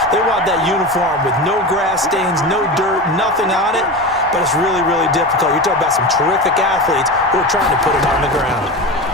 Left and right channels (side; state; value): both; normal; correlation 0.25